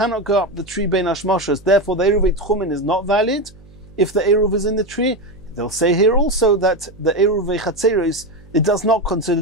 go up the tree Bein Hashmoshes, therefore the Eruvei Tchumin is not valid if the Eruv is in the tree. They'll say here also that the Eruvei Chatzeris, it does not consider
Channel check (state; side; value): noise; right; hum, 24 dB below the sound